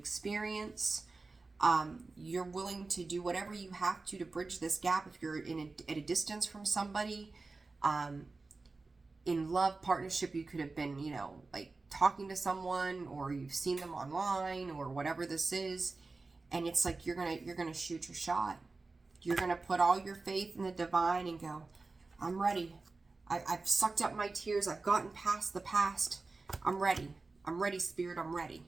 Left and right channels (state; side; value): quieter; left; 3.7 dB